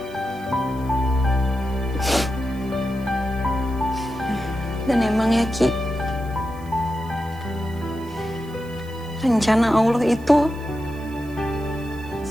Dan emang ya, Ki, rencana Allah itu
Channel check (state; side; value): noise; right; hiss, 25 dB below the sound